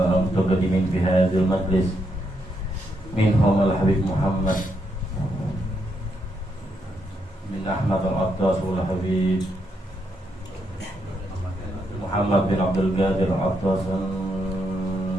في هذا المجلس، منهم الحبيب محمد بن أحمد العطاس والحبيب محمد بن عبد القادر العطاس،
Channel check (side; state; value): both; normal; correlation 0.79